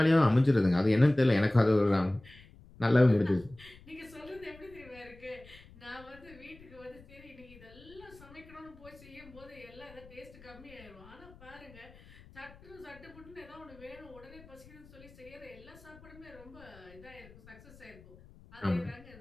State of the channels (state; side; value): noise; left; rumble, 22 dB below the sound